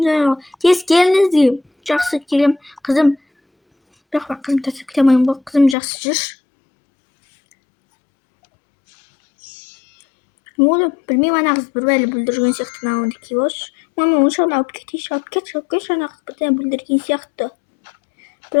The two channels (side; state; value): right; drops out; at 5.8 s